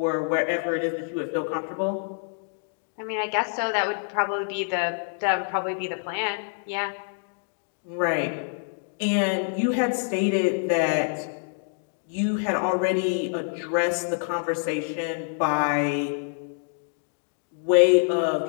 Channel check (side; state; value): right; silent; digital silence